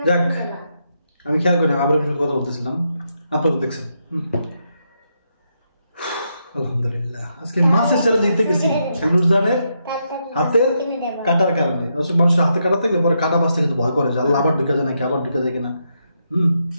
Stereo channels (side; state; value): both; inverted; correlation -0.81